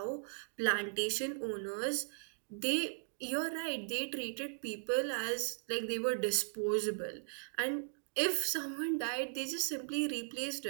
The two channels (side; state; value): left; silent; digital silence